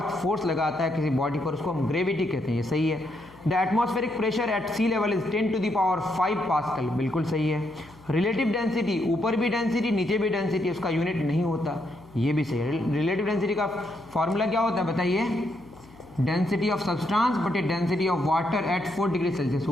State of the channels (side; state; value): left; noise; hum, 24 dB below the sound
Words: फोर्स लगाता है किसी बॉडी पर उसको हम ग्रेविटी कहते हैं, ये सही है। The atmospheric pressure at sea level is 10⁵ pascal, बिल्कुल सही है। रिलेटिव डेंसिटी, ऊपर भी डेंसिटी नीचे भी डेंसिटी, उसका यूनिट नहीं होता, ये भी सही है। रिलेटिव डेंसिटी का फॉर्मूला क्या होता है बताइए, डेंसिटी ऑफ सब्सटेंस बटे density of water at 4 degree Celsius.